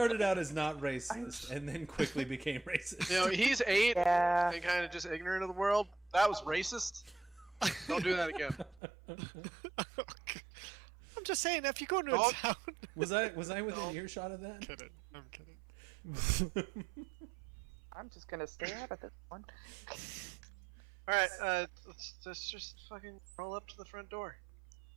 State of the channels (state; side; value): drops out; left; at 8.8 s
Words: out as not racist, and then quickly became racist. You know, he's 8 Yeah. and kind of just ignorant of the world. That was racist. Don't do that again. I'm just saying, if you go into a Don't- town. Was I within earshot of that? kidding. I'm kidding. I'm just gonna stay out of this one. All right, let's just fucking roll up to the front door.